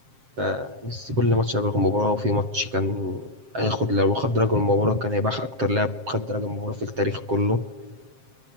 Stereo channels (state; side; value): late; left; 7.5 ms